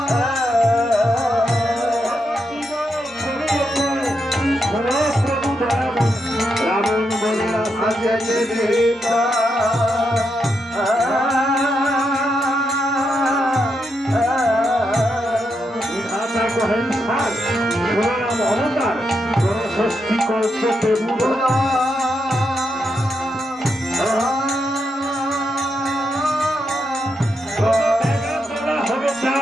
রাবণ বলে অবতার ষষ্ঠী কল্পে হবে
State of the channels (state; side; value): normal; both; correlation 0.83